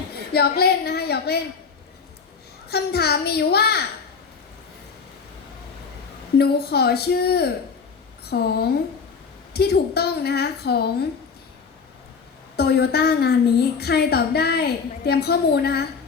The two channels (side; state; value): right; quieter; 5.6 dB